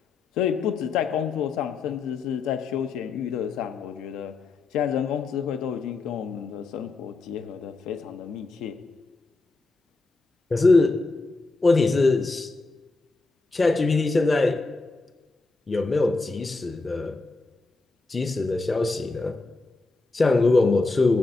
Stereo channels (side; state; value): right; quieter; 3.6 dB